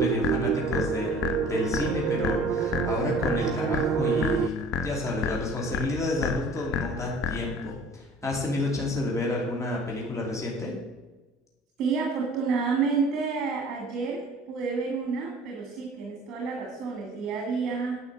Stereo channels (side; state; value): both; normal; correlation 0.49